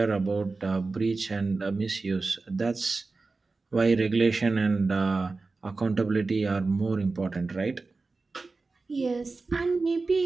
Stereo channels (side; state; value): left; quieter; 3.8 dB